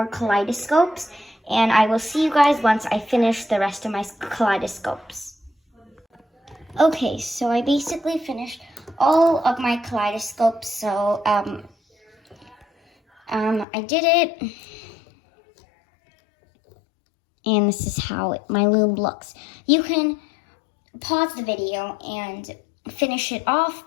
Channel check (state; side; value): drops out; right; at 13.7 s